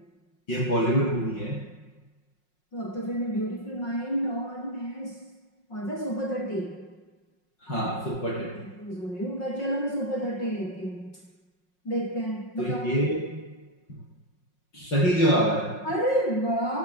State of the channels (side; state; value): right; late; 5.5 ms